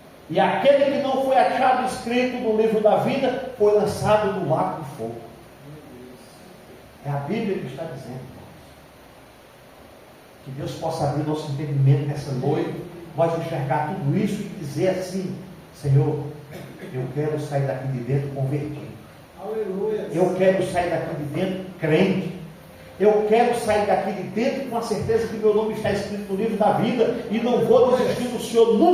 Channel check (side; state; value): both; identical; correlation 1.00